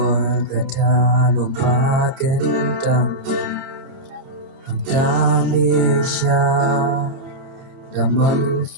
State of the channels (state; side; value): late; left; 30 ms